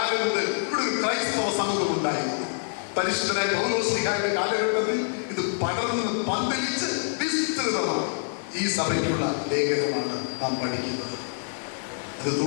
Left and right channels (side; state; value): right; silent; digital silence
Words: മുതൽ ഇവിടെ ഒരു ക്രൈസ്തവ സമൂഹം ഉണ്ടായിരുന്നു. പരിശുദ്ധനായ പൗലോസ്ലീഹായുടെ കാലഘട്ടത്തിൽ ഇത് പടർന്ന് പന്തലിച്ച് വിസ്തൃതമാണ്. ഈ സഭയ്ക്കുള്ള ലേഖനമാണ് നാം പഠിക്കുന്നത്. അത്